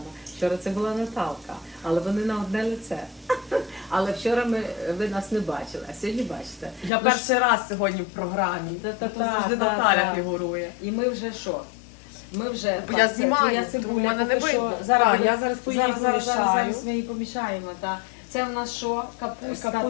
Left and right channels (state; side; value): drops out; right; at 6.9 s